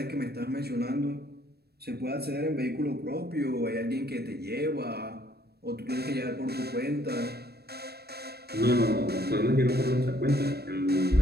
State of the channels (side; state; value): left; late; 0.47 ms